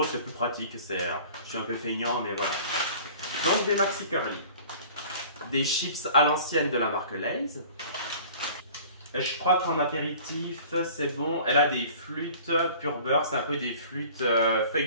c'est plus pratique, je suis un peu feignant mais voilà. Donc des maxi curly. Des chips à l'ancienne de la marque Lay's. Et je crois qu'en apéritif, c'est bon. Elle a des flûtes pur beurre, c'est un peu des flûtes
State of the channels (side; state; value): both; inverted; correlation -0.45